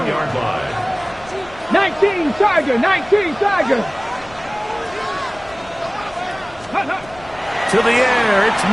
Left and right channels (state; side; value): noise; left; rumble, 22 dB below the sound